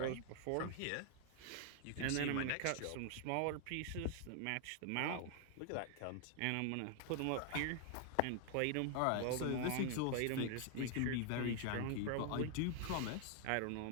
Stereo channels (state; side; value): different; both; correlation 0.00